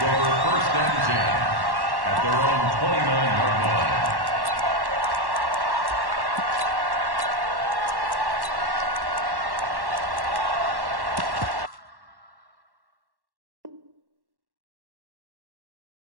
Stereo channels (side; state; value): left; late; 1.1 ms